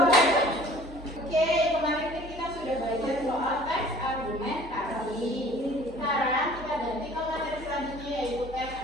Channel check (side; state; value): both; normal; correlation 0.50